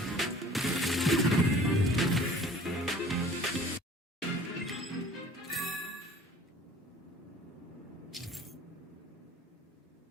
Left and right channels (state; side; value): normal; both; correlation 0.49